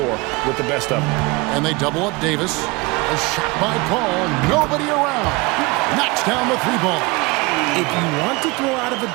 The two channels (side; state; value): left; quieter; 24.9 dB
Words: with the best of them. And they double up Davis. A shot by Paul. Nobody around. Knocks down the 3 ball. If you want to throw out of a